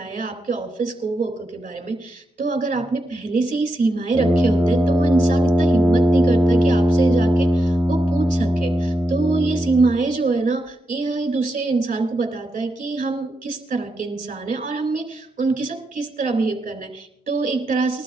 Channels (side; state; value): both; normal; correlation 0.85